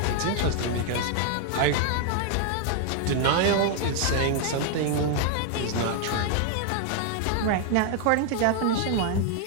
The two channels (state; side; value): different; both; correlation 0.00